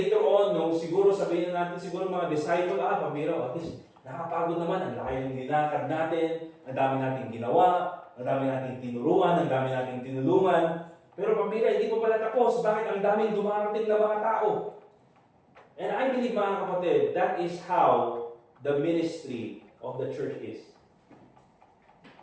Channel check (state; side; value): identical; both; correlation 1.00